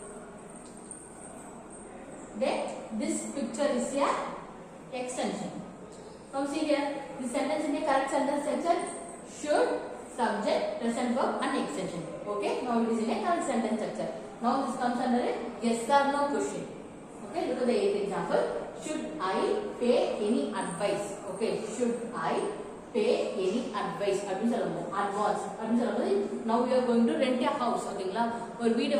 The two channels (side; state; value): both; identical; correlation 1.00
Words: Then this picture is a extension. Now see here, the sentence in a correct sentence structure: should, subject, present verb and extension. Okay, now it is in a correct sentence structure. Now this comes under a yes or no question. Okay, look at the eighth example. Should I pay any advice? Okay, should I pay any advice அப்படின்னு சொல்லும்போது advance அப்படின்னு சொல்லும்போது now you are going to rent a house. ஓகேங்களா, ஒரு வீடை